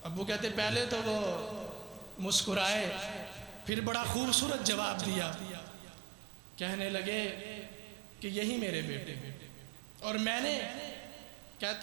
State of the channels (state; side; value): drops out; left; at 3.7 s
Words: ابو کہتے پہلے تو وہ مسکرائے، پھر بڑا خوبصورت جواب دیا، کہنے لگے کہ یہی میرے بیٹے۔ اور میں نے،